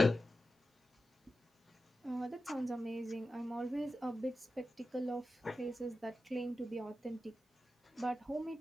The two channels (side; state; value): both; normal; correlation 0.92